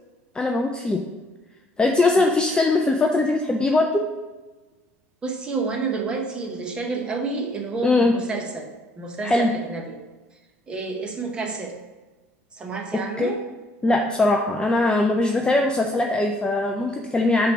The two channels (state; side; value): normal; both; correlation 0.68